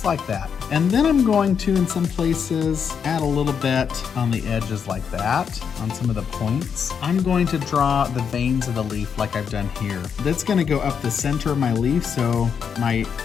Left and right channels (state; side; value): quieter; right; 7.0 dB